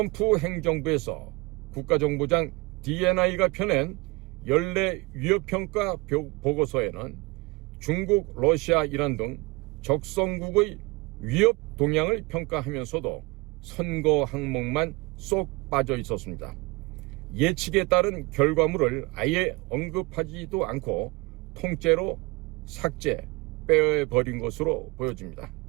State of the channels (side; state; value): left; quieter; 25.1 dB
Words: 행정부에서 국가정보장 DNI가 펴낸 연례 위협평가 보고서에는 중국, 러시아, 이란 등 적성국의 위협 동향을 평가하면서도 선거 항목만 쏙 빠져 있었습니다. 예측에 따른 결과물을 아예 언급하지도 않고 통째로 삭제, 빼버린 것으로 보여집니다.